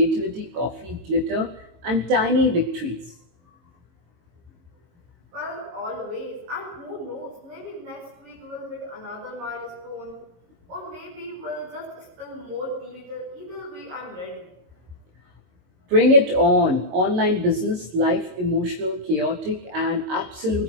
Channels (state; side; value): late; left; 22 ms